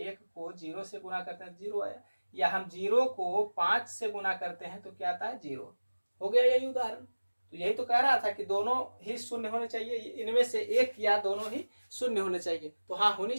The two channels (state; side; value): inverted; both; correlation -1.00